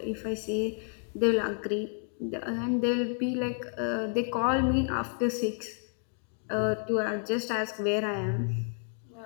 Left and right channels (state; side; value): silent; right; 57 dB below the other